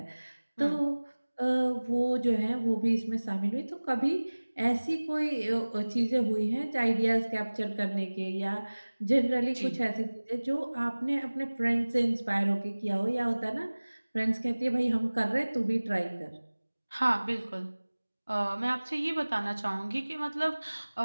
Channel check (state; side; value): inverted; both; correlation -1.00